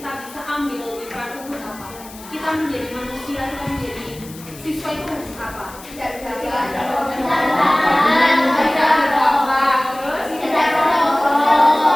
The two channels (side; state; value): left; noise; hiss, 18 dB below the sound